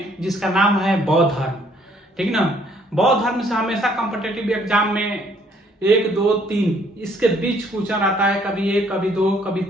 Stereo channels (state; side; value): normal; both; correlation 0.64